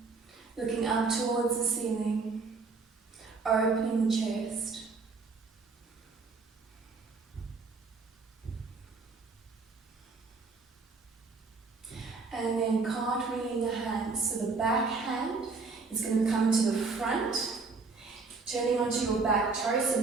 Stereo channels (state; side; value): quieter; left; 4.2 dB